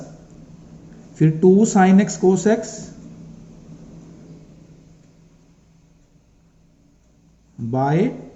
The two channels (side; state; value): both; identical; correlation 1.00